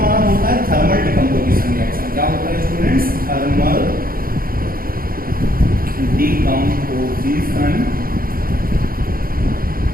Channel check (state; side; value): late; left; 0.42 ms